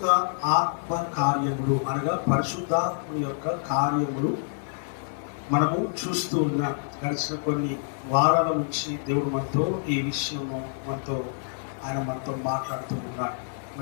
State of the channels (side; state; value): right; silent; digital silence